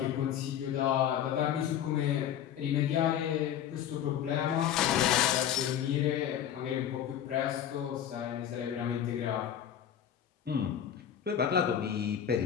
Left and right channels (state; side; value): quieter; right; 9.8 dB